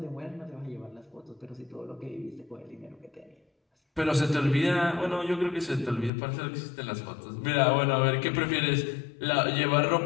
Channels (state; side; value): drops out; right; at 6.1 s